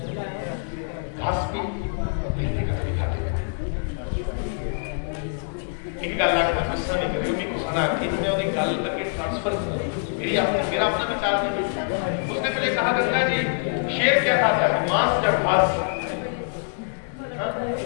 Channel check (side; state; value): right; silent; digital silence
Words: घास भी बिल्ली का भी खा लेंगे। इनका लाखा गुस्सा नहीं करेगी, उनको सुना कि इन्होंने उन्हें गाल करके ट्रांसफर किया। मेरा अपना विचार नहीं। उसने पहले कहा गंगा जी शेर क्या खाता है? मांस या घास?